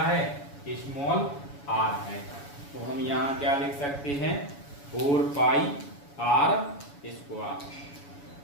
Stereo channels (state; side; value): late; right; 7.1 ms